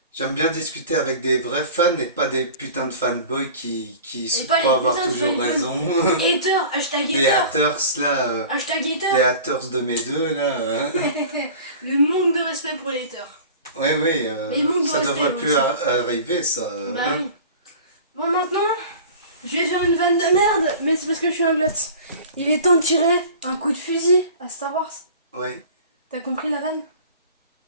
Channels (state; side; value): inverted; both; correlation -0.40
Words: J'aime bien discuter avec des vrais fans et pas des putains de fanboys qui Et pas les croient avoir putains de toujours fanboys. raison. Hater, hashtag Les hater. haters là, Hashtag les hater. haters de mes deux là. Le manque de respect pour les haters. Oui, oui, Mais il manque de ça respect devrait plus aussi. arriver ça. Bah Hein. oui. Bon, maintenant, je vais faire une vanne de merde, mais c'est parce que je suis un glotte. Il est temps de tirer un coup de fusil à Star Wars. Ouais. T'as compris la vanne?